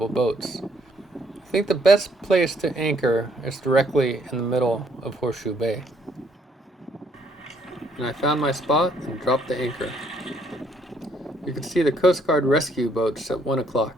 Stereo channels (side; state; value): both; normal; correlation 0.68